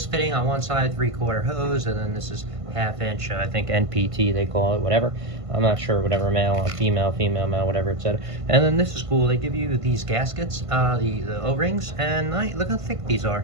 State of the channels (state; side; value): late; left; 1.5 ms